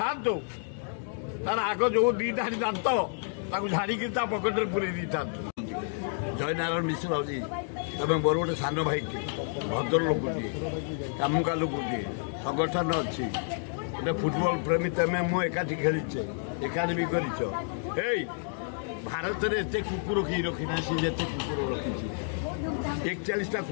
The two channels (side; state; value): right; silent; 58 dB below the other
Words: ଥାନ୍ତୁ ତାର ଆଗ ଯୋଉ ଦି ଧାଡି ଦାନ୍ତ ତାକୁ ଝାଡିକି ତା ପକେଟରେ ପୁରେଇ ଦେଇଥାନ୍ତୁ। ଜୟନାରାୟଣ ମିଶ୍ର ହଉଛି ତମେ ମୋର ଗୋଟେ ସାନ ଭାଇଟିଏ, ଭଦ୍ର ଲୋକଟିଏ, କାମୁକା ଲୋକଟିଏ, ସଂଗଠନ ଅଛି, ଗୋଟେ ଫୁଟବଲ ପ୍ରେମୀ ତମେ ମୁଁ ଏକାଠି ଖେଳିଛେ, ଏକାଠି ବି କରିଛ। ଏଇ ଭାରତରେ ଏତେ କୁକୁର କେହି ରଖିନା, ସେ ଯେତେ କୁକୁର ରଖିଛି 41ଟା